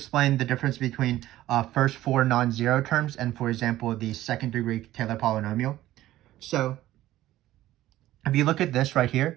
the difference between first 4 non-zero terms and, for example, the second degree Taylor polynomial. So if you look at this right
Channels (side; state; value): left; quieter; 14.8 dB